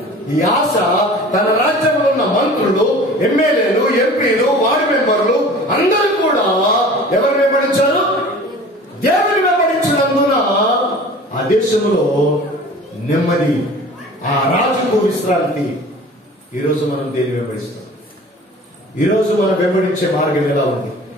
ఈ ఆశ తన రాజ్యంలో ఉన్న మంత్రులు, ఎమ్మెల్యేలు, ఎంపీలు, వార్డు మెంబర్లు అందరూ కూడా ఎవరు వెంబడించారు? దేవుని వెంబడించినందున ఆ దేశంలో నెమ్మది, ఆ రాజుకు విశ్రాంతి. ఈరోజు మనం దేని వెంబడిస్తాం? ఈరోజు మనం వెంబడించే మార్గం ఎలా ఉంది?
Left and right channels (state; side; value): normal; both; correlation 0.43